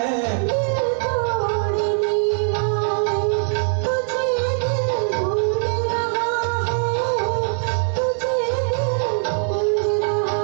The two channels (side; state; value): left; silent; 63 dB below the other